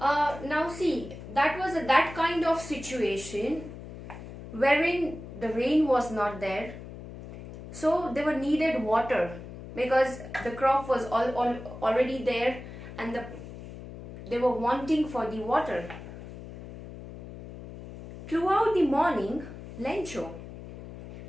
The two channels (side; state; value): left; noise; hum, 13 dB below the sound